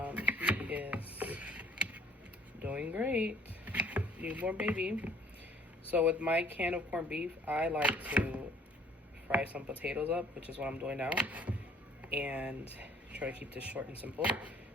he is doing great. Newborn baby. So with my can of corned beef, I like to fry some potatoes up, which is what I'm doing now. And try to keep this short and simple.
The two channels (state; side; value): normal; both; correlation 0.56